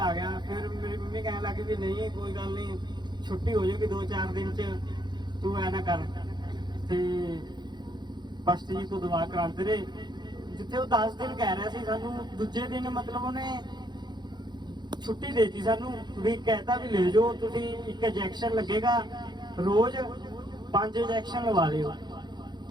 ਗਿਆ। ਫਿਰ ਮੇਰੀ ਮੰਮੀ ਕਹਿਣ ਲੱਗੀ ਵੀ ਨਹੀਂ ਕੋਈ ਗੱਲ ਨਹੀਂ, ਛੁੱਟੀ ਹੋ ਜਾਊਗੀ 2-4 ਦਿਨ 'ਚ, ਤੂੰ ਐ ਨਾ ਕਰ। ਤੇ ਪਸ਼ਟ ਜੀ ਤੋਂ ਦਵਾ ਕਰਾਉਂਦੇ ਰਹੇ, ਜਿੱਥੇ ਉਹ 10 ਦਿਨ ਕਹਿ ਰਿਹਾ ਸੀ, ਸਾਨੂੰ ਦੂਜੇ ਦਿਨ ਮਤਲਬ ਉਹਨੇ ਛੁੱਟੀ ਦੇਤੀ ਸਾਨੂੰ, ਵੀ ਕਹਿਤਾ ਵੀ ਲੈ ਜਾਓ ਤੁਸੀਂ, ਇੱਕ ਇੰਜੈਕਸ਼ਨ ਲੱਗੇਗਾ ਰੋਜ਼, 5 ਇੰਜੈਕਸ਼ਨ ਲਵਾ ਲਿਓ।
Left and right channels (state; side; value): late; left; 0.21 ms